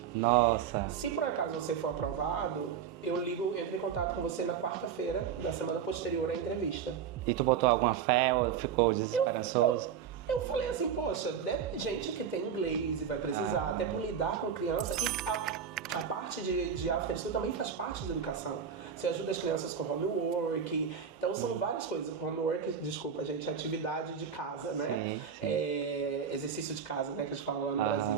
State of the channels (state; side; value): quieter; left; 7.6 dB